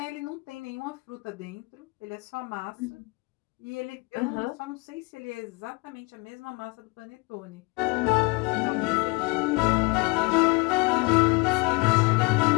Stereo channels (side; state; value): right; quieter; 27.3 dB